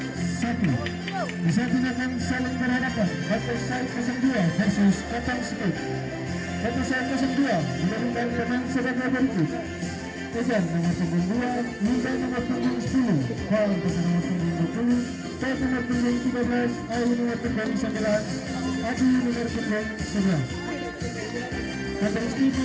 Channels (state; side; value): identical; both; correlation 1.00